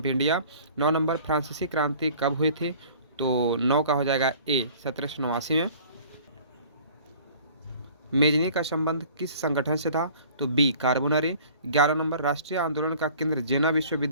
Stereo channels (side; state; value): both; inverted; correlation -0.48